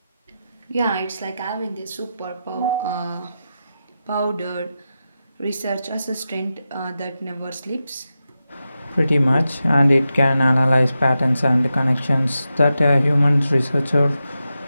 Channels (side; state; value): both; inverted; correlation -0.90